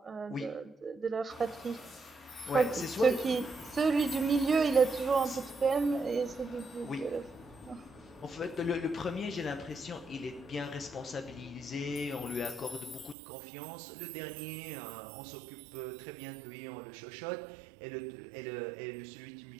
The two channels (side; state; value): left; drops out; at 13.2 s